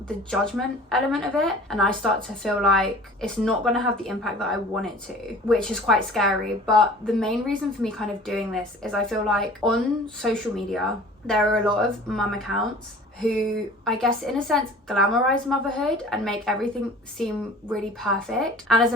the judgment element of it, and I start to feel like it's not going to have the impact that I want it to, which is quite scary. But the main reason for me kind of doing this is I feel like on social media there are a lot of mum accounts who, I guess in a sense, glamorize motherhood and make everything seem really perfect. And as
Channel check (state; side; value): normal; both; correlation 0.44